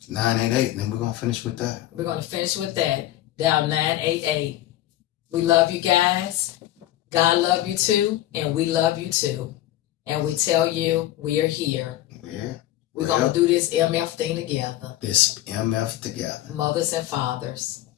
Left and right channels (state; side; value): quieter; right; 14.2 dB